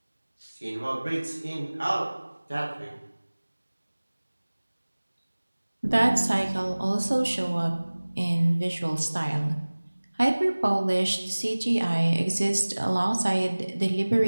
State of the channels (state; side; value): inverted; both; correlation -1.00